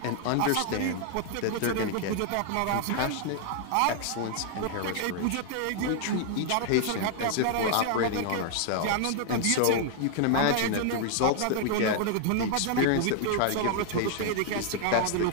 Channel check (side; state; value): both; different; correlation 0.00